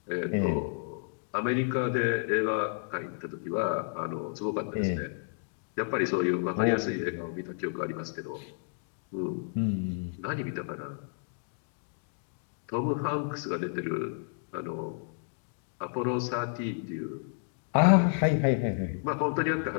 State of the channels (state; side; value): silent; right; digital silence